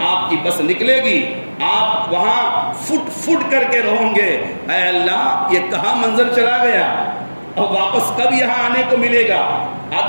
آپ کی بس نکلے گی، آپ وہاں فٹ فٹ کر کے رہوں گے، اے اللہ یہ کہاں منظر چلا گیا اور واپس کب یہاں آنے کو ملے گا؟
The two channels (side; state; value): both; inverted; correlation -1.00